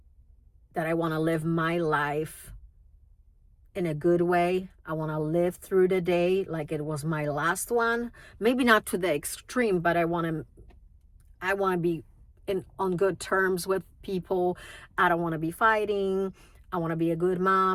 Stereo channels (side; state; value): both; identical; correlation 1.00